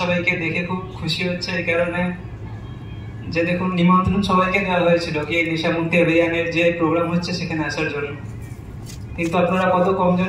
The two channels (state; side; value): identical; both; correlation 1.00